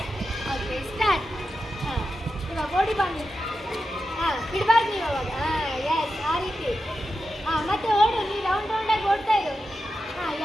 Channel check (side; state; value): both; normal; correlation 0.90